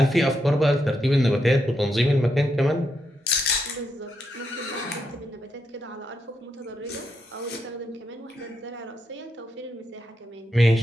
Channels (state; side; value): normal; both; correlation 0.82